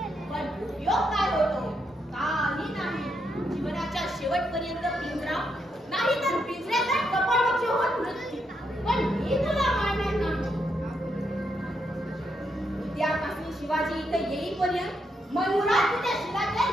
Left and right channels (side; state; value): both; normal; correlation 0.80